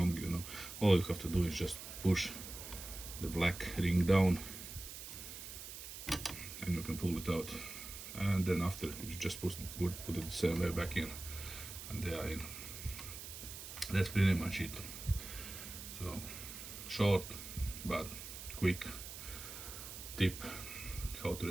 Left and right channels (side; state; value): right; noise; hiss, 10 dB below the sound